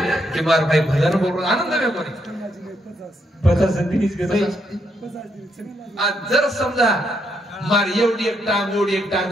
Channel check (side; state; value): both; normal; correlation 0.77